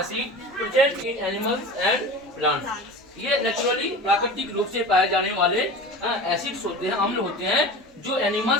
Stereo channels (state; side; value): normal; both; correlation 0.33